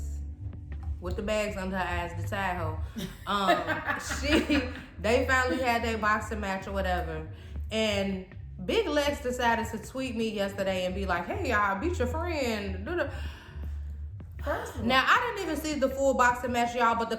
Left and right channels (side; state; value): both; identical; correlation 1.00